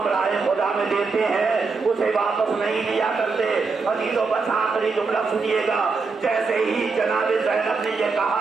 राय खुदा में देते हैं उसे वापस नहीं लिया करते। अजीजों, बस आखिरी जुमला सुनिएगा। जैसे ही जनाबे ज़ैनब ने यह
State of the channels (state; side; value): quieter; left; 4.5 dB